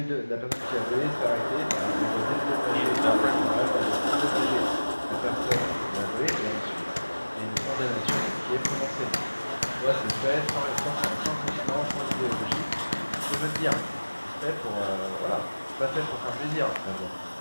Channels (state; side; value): inverted; both; correlation -1.00